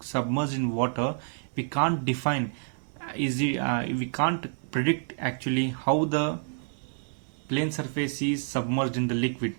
submerged in water, we can't define we can't predict actually how the plane surface is submerged in the liquid.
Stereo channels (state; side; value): silent; left; 59 dB below the other